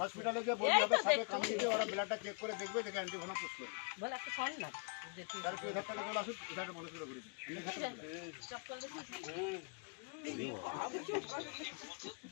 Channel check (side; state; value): right; quieter; 34.8 dB